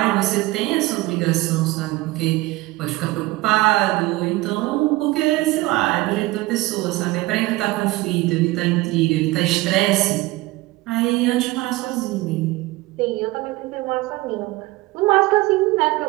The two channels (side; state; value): left; quieter; 19.9 dB